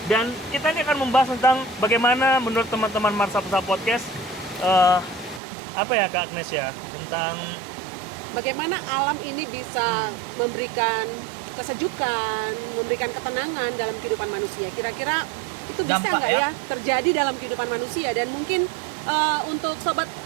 Dan kita ini akan membahas tentang bagaimana menurut teman-teman Mersapsa Podcast, Kak Agnes ya, tentang bagaimana alam ini bisa memberikan kesejukan, memberikan ketenangan dalam kehidupan manusia. Kira-kira itu bisa nggak ya terjadi dalam kehidupan manusia? Dan mungkin untuk Sobat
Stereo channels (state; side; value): drops out; left; at 5.4 s